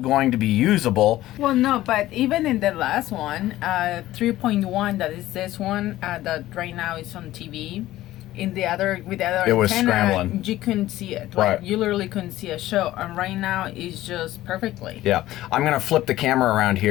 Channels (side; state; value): right; quieter; 15.3 dB